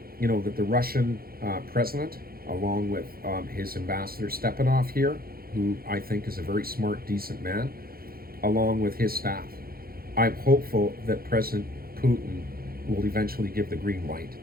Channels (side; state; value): left; late; 0.43 ms